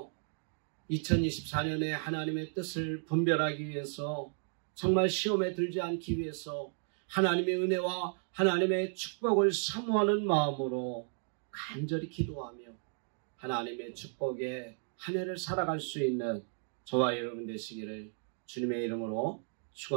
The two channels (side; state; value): left; silent; 55 dB below the other